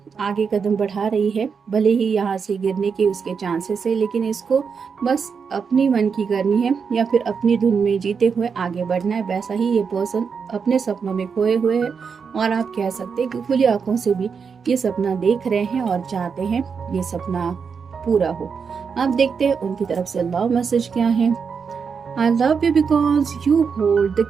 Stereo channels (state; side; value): quieter; left; 6.0 dB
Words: आगे कदम बढ़ा रही है, भले ही यहाँ से गिरने के उसके चांसेस है, लेकिन इसको बस अपनी मन की करनी है या फिर अपनी धुन में जीते हुए आगे बढ़ना है। वैसा ही ये पर्सन अपने सपनों में खोए हुए है और आप कह सकते हैं कि खुली आंखों से भी ये सपना देख रहे हैं और चाहते हैं ये सपना पूरा हो। अब देखते हैं उनकी तरफ से लव मैसेज क्या है। I love you because you hold